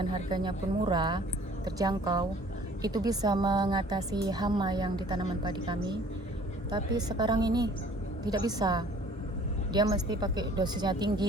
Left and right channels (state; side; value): normal; both; correlation 0.53